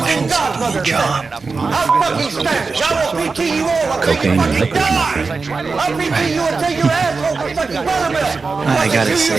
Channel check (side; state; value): left; quieter; 4.4 dB